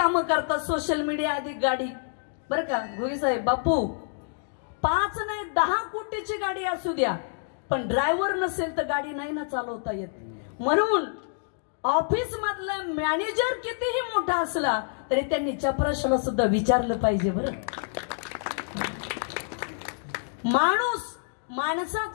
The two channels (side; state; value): right; silent; digital silence